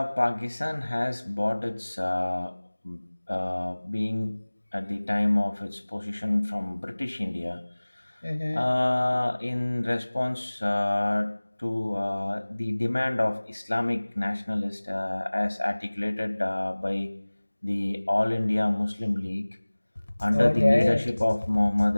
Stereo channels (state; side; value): inverted; both; correlation -1.00